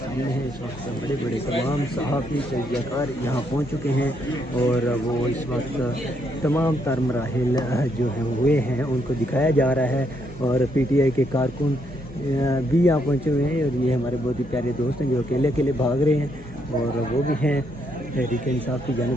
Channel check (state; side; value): normal; both; correlation 0.75